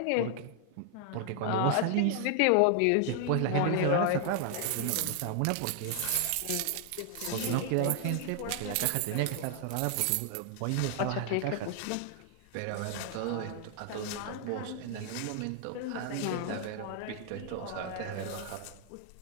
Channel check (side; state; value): both; different; correlation 0.00